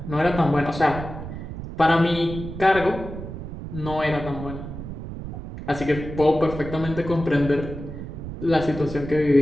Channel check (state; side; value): noise; right; rumble, 9 dB below the sound